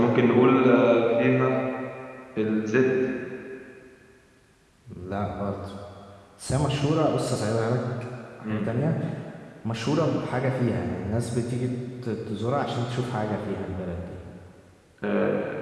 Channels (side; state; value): both; identical; correlation 1.00